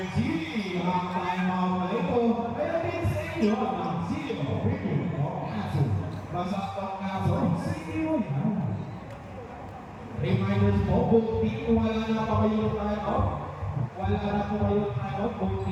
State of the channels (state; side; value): identical; both; correlation 1.00